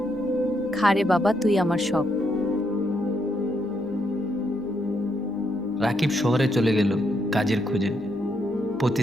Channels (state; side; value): noise; left; hum, 26 dB below the sound